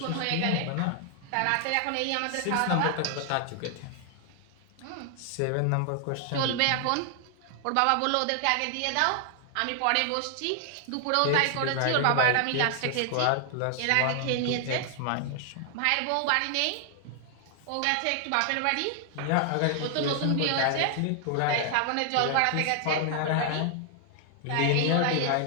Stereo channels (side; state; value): both; different; correlation 0.00